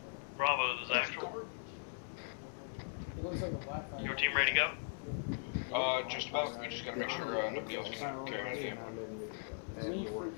Bravo is actual. It looks like a Wi-Fi. Your team ready to go? Just about. We just gotta make sure nobody else is carrying anything. Leave for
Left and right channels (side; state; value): right; silent; digital silence